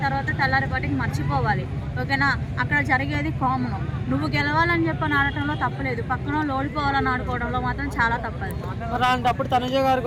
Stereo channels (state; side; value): identical; both; correlation 1.00